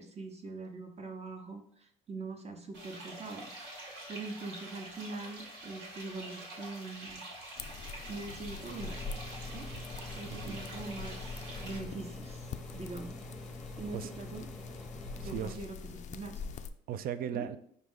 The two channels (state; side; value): normal; both; correlation 0.50